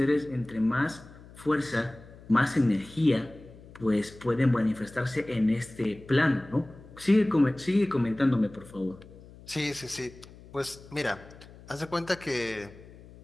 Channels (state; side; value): noise; left; hum, 20 dB below the sound